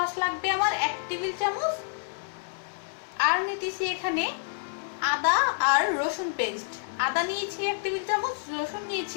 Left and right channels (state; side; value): silent; right; digital silence